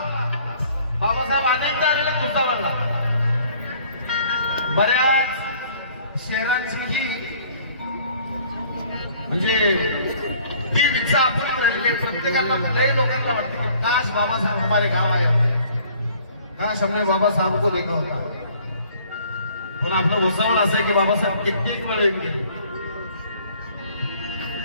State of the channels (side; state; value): both; inverted; correlation -0.56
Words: बाबासाहेब अनेकदा आलेले भुसावळला. बऱ्याच शहरांची ही म्हणजे ती इच्छा आपण राहिलेली आहे. प्रत्येकाला लय लोकांना वाटते की काश बाबासाहेब हमारे गाव आए होते, काश हमने बाबा साहेब को देखा होता. पण आपलं भुसावळ असं आहे की बाबासाहेब कित्येक वेळ येऊन गेले,